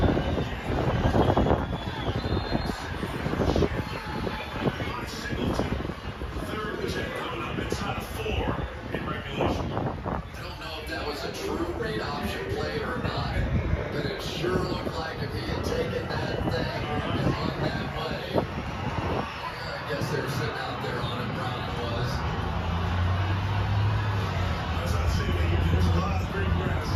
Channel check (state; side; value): identical; both; correlation 1.00